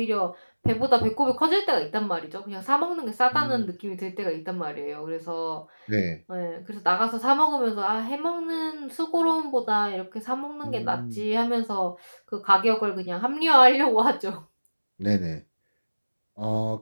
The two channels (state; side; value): inverted; both; correlation -1.00